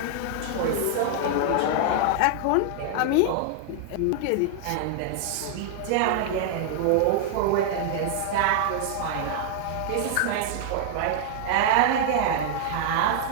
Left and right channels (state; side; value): different; both; correlation 0.00